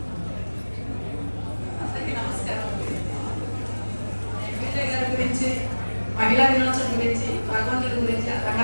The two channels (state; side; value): inverted; both; correlation -1.00